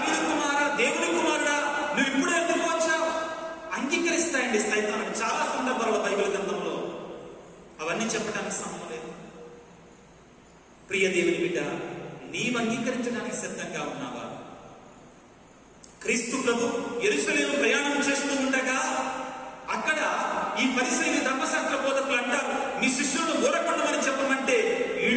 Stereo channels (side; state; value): both; identical; correlation 1.00